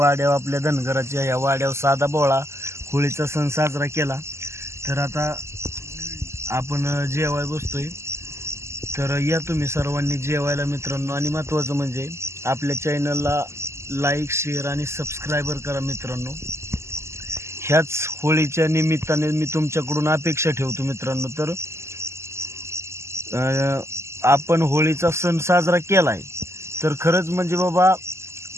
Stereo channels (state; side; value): late; left; 0.13 ms